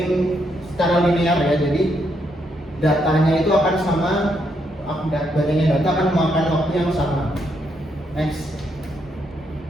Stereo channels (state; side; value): normal; both; correlation 0.77